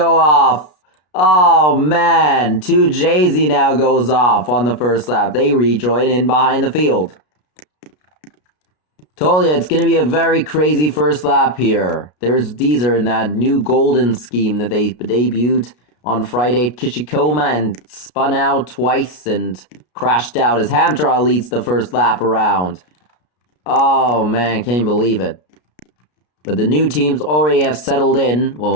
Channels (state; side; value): late; right; 33 ms